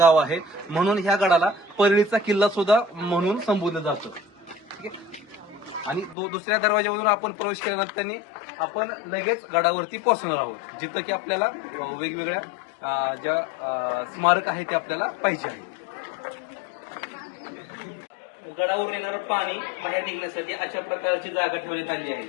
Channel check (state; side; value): drops out; right; at 6.2 s